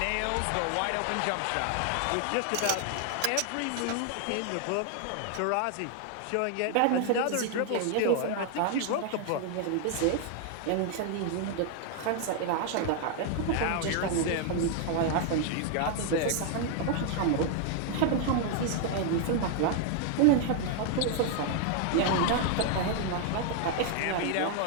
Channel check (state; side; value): different; both; correlation 0.00